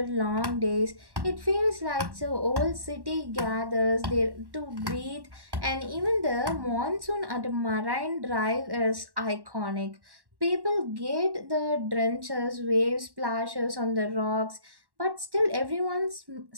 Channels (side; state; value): left; late; 1.1 ms